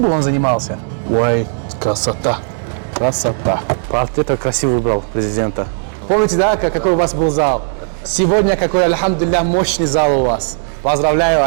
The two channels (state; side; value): silent; left; digital silence